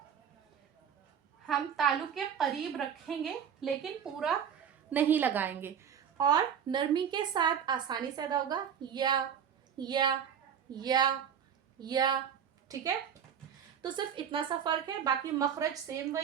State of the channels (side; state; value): left; quieter; 8.2 dB